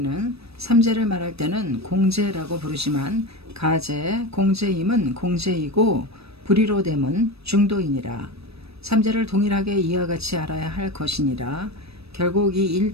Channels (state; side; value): late; left; 0.78 ms